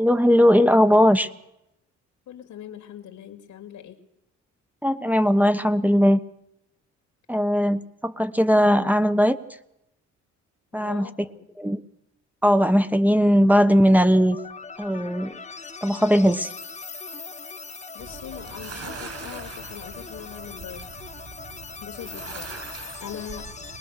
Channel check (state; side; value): normal; both; correlation 0.94